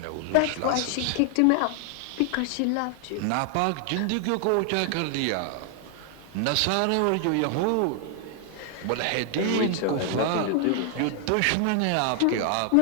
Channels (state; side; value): different; both; correlation 0.00